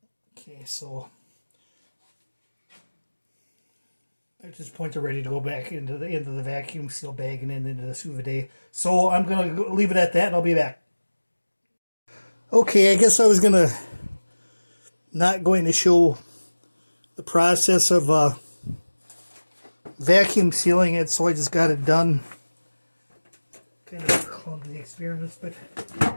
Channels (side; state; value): both; inverted; correlation -1.00